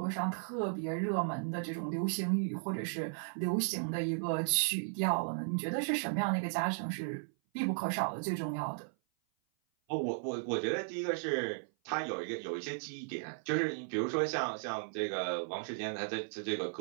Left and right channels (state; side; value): silent; left; 54 dB below the other